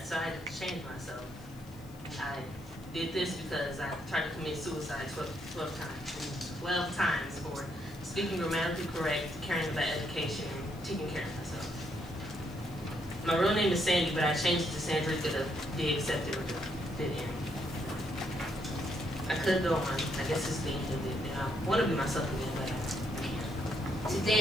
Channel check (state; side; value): noise; left; hiss, 25 dB below the sound